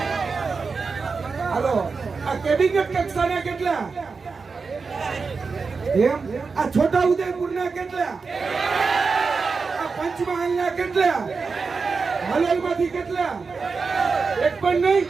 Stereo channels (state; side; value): quieter; left; 4.7 dB